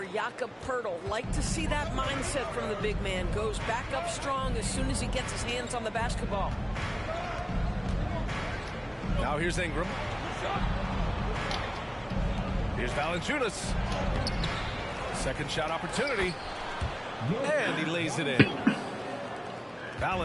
Jakob Poeltl. Like to see that mindset from the big man. Goes back up strong as soon as he gets his hands on the basketball. Now here's Ingram. Here's Valanciunas. Second shot opportunity. And he lays it in.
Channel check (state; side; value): identical; both; correlation 1.00